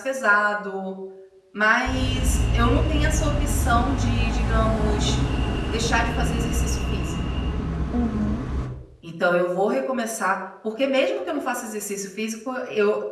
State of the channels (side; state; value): both; identical; correlation 1.00